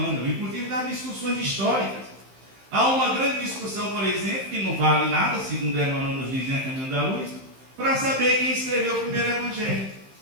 inclusive das discussões históricas. Há uma grande discussão, por exemplo, que não vale nada, segundo Emmanuel nos diz em A Caminho da Luz, para saber quem escreveu o primeiro Evangelho.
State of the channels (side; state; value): left; late; 15 ms